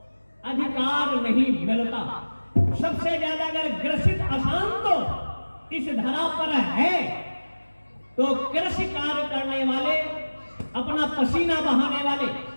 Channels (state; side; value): inverted; both; correlation -1.00